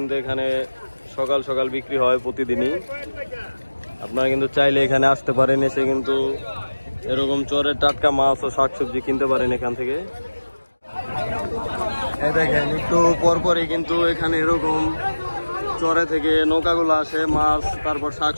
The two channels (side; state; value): both; inverted; correlation -1.00